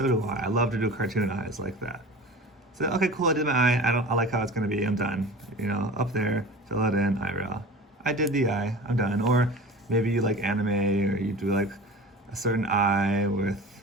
do I. I love to do cartoon eyes like that. So, okay, cool, I did my eye, I like how it's gonna be, I'm done. You know, up there, fill it in, eyebrow. I did the eye, I'm done. Or maybe you like anime, or you do like a certain eye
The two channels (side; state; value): both; normal; correlation 0.36